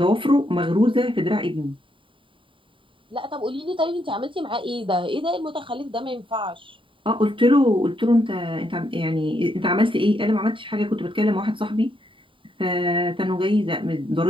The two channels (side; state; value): left; late; 0.25 ms